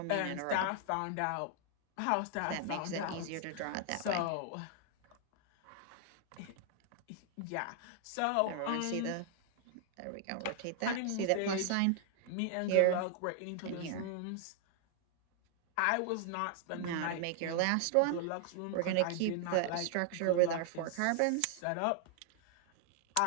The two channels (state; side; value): different; both; correlation 0.00